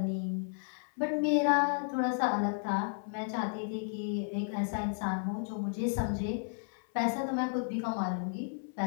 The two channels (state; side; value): silent; right; 56 dB below the other